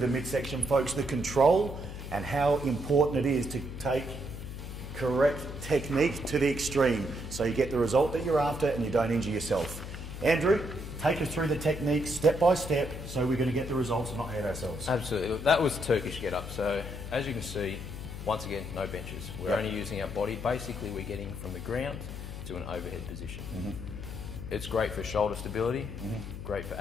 the midsection, folks, the control and how important it is to take correct technique to the extreme so you get the result that you're after and you don't injure yourself. Andrew, take us through the technique step by step so we're going to get the results and not hurt ourselves. Absolutely. Look, that was the Turkish get-up. So as you can see, once again, no benches. We're only using our body. Basically, we're getting from the ground to an overhead position. It's great for shoulder stability, great for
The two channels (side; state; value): left; noise; hum, 9 dB below the sound